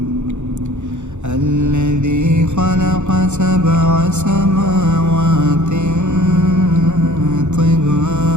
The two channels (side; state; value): left; late; 0.83 ms